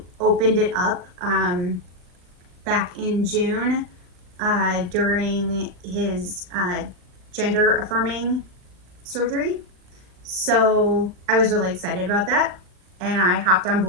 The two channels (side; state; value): left; late; 39 ms